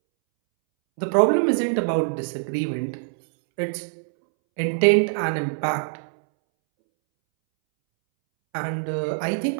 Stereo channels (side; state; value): left; silent; 63 dB below the other